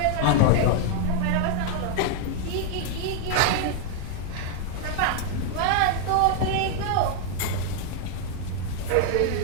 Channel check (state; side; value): different; both; correlation 0.00